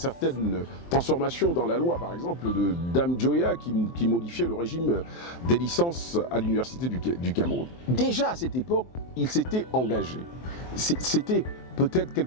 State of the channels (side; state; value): right; late; 23 ms